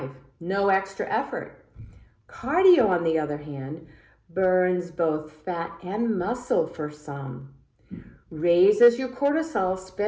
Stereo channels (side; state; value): both; identical; correlation 1.00